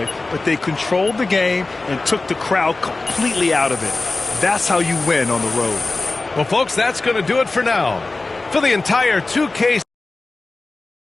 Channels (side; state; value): right; quieter; 3.3 dB